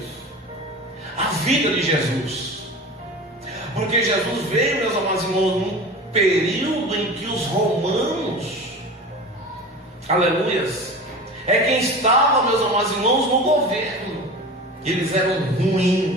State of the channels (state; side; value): normal; both; correlation 0.33